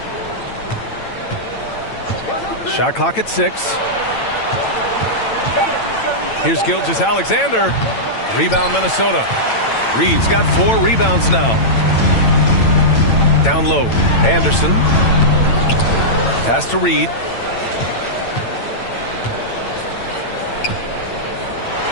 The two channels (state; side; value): late; right; 8.9 ms